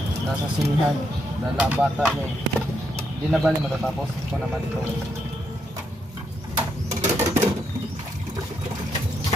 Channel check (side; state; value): both; normal; correlation 0.79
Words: Nasa sinihan, dala ang bata niya. Hindi na bali matatapos ko naman ito.